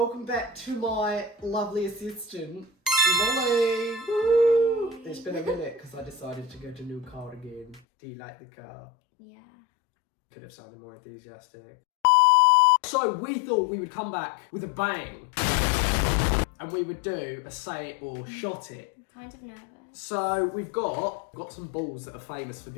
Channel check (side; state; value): right; drops out; at 7.8 s